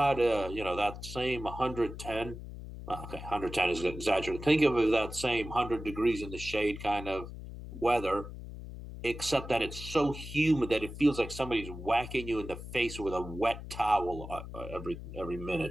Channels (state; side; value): noise; left; hum, 11 dB below the sound